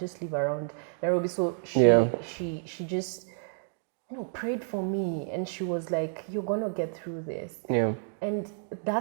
live around Nairobi. So she just, prayed for me. And she was like, you're going to get through this. And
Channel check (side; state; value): left; silent; 58 dB below the other